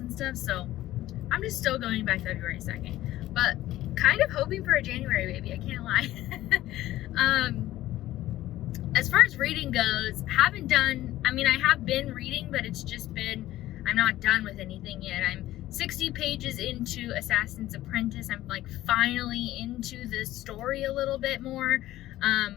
stuff. So I'm just still going by February 2nd, but kind of hoping for a January baby, I can't lie. as far as reading goes, I have been reading, but it's just been, I'm not done with anything yet. I'm 60 pages into Assassin's Apprentice. I'm like finally into the story a little bit more.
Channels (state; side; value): quieter; right; 15.1 dB